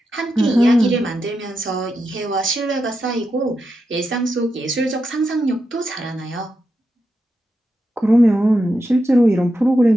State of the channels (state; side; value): normal; both; correlation 0.87